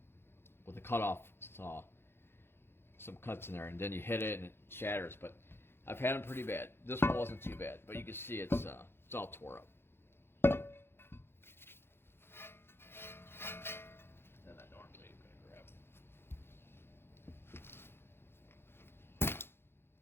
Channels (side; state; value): right; late; 0.11 ms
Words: with a cutoff saw. Some cuts in there, and then you hit it and it shatters. But I've had them pretty bad. This one wasn't too bad, but you can see it's all tore up. And I normally am going to grab.